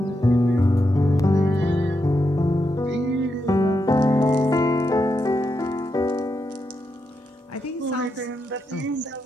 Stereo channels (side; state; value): both; normal; correlation 0.84